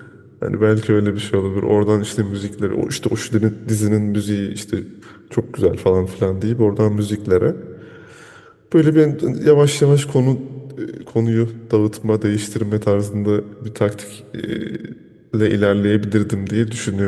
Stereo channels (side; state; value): both; identical; correlation 1.00